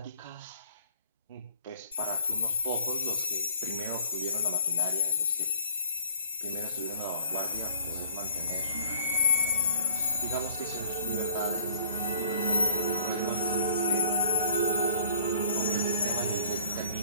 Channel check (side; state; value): both; inverted; correlation -0.47